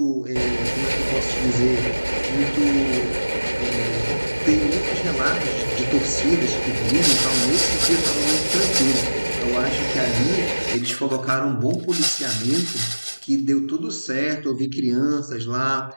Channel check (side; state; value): both; inverted; correlation -1.00